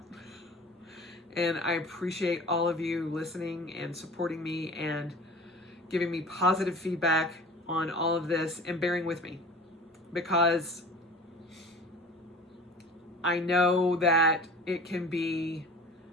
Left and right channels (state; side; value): normal; both; correlation 0.40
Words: And I appreciate all of you listening and supporting me and giving me positive feedback on all of this and bearing with me, because I know that it can be